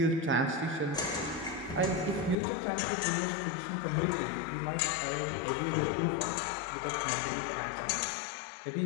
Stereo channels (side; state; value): right; drops out; at 2.4 s